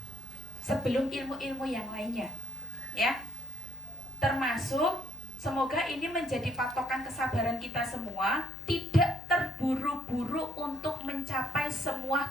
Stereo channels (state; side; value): noise; left; hum, 20 dB below the sound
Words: sebelum ilmu-ilmu yang lainnya ya. Termasuk semoga ini menjadi patokan kesabaran kita semua, tidak terburu-buru untuk mencapai